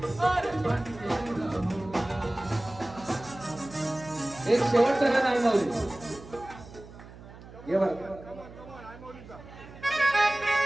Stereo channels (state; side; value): noise; right; hum, 18 dB below the sound